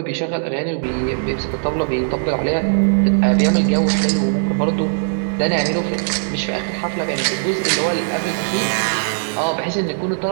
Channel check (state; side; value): silent; left; digital silence